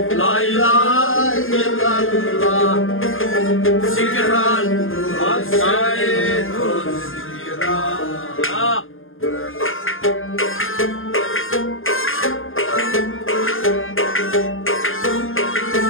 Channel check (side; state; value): right; late; 0.59 ms